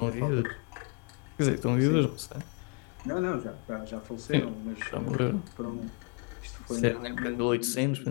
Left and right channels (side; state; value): right; quieter; 34.4 dB